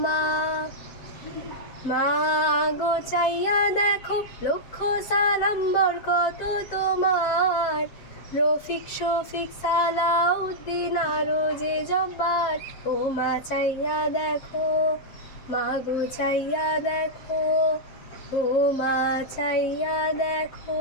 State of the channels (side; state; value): right; late; 7.6 ms